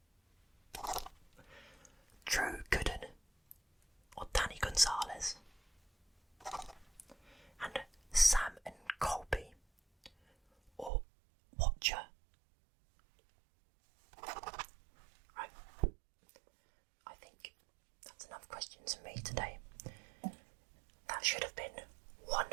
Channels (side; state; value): left; drops out; at 10.9 s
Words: Drew Gooden or Danny Gonzalez, and Sam and Colby or Watcher. Right, I think that's enough questions for me today. That should have been